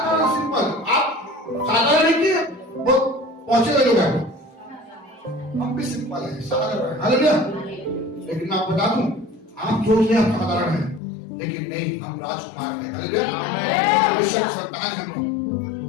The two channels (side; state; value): right; drops out; at 11.0 s